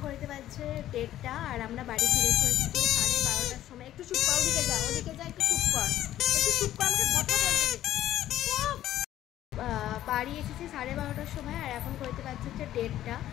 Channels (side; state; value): right; quieter; 12.9 dB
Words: করতে পারছে 1:30 আর আমরা বাড়ি ফিরে চলেছি 12:30টার সময় একটু চুপ কর ওদিকে যা একটু চুপ কর আমাকে কথা বলতে দে বাড়ি এসেছি 12:30টার সময় আর এখন করতে পারছি হচ্ছে 1:30